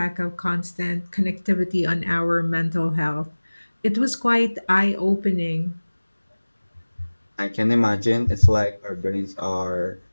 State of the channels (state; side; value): inverted; both; correlation -1.00